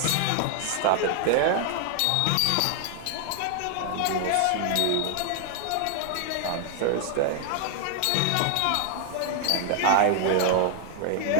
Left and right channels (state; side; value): different; both; correlation 0.00